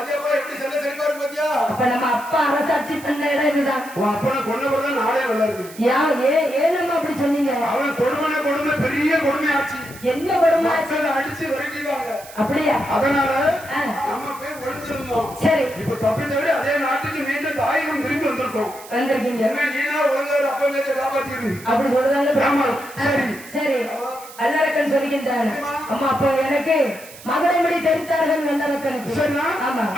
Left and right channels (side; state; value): right; noise; hiss, 18 dB below the sound